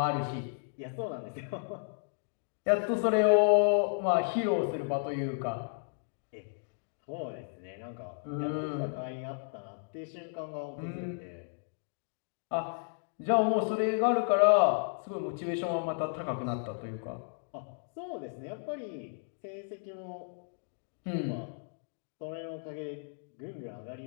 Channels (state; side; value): silent; right; digital silence